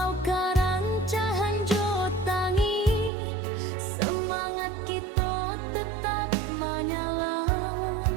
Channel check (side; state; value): left; drops out; at 3.1 s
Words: karancahan jotangi, semangat kita tetap menyala.